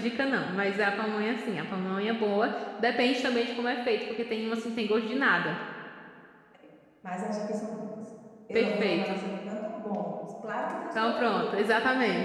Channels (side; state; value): both; identical; correlation 1.00